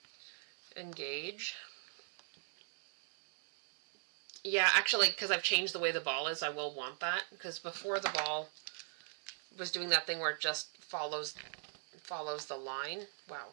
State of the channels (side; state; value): left; silent; digital silence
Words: Engage. Yeah, actually, because I've changed the way the ball is, I will want that. Because before the ball was doing that thing where it just follows the line. Wow.